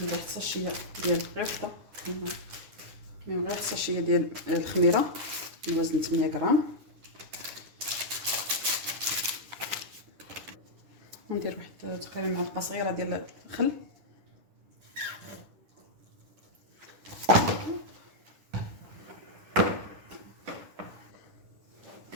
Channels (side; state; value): left; late; 9.9 ms